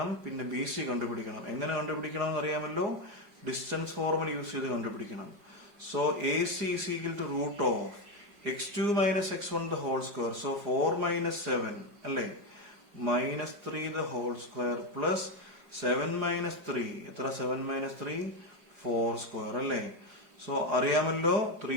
പിന്നെ ബി സി കണ്ടുപിടിക്കണം. എങ്ങനെ കണ്ടുപിടിക്കണം എന്ന് അറിയാമല്ലോ? ഡിസ്റ്റൻസ് ഫോർമുല യൂസ് ചെയ്ത് കണ്ടുപിടിക്കണം. So A C is equal to root of x2 minus x1 the whole square. So 4 minus 7 അല്ലേ, minus 3 the whole square plus 7 minus 3. എത്ര? 7 minus 3 4 square അല്ലേ. സോ അറിയാമല്ലോ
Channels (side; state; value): left; late; 4.9 ms